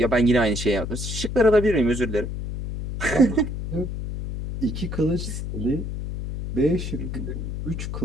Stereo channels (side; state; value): left; noise; hum, 5 dB below the sound